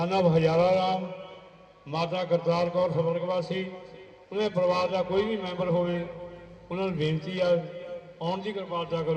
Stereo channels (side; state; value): both; identical; correlation 1.00